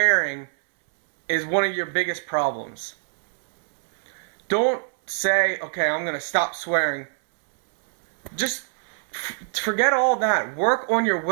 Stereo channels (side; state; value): left; silent; 63 dB below the other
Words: is one of your biggest problems. Don't say, okay, I'm going to stop swearing. Just forget all that. Work on your